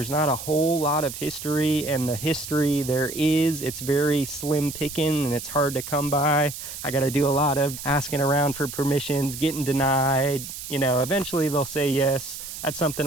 not a whole lot of history, and the history there is, it's very slim picking and it's hard to come by. I got to do a lot of asking around for permissions, getting denied. You know, eventually they'll say yes. That's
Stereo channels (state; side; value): noise; right; hiss, 10 dB below the sound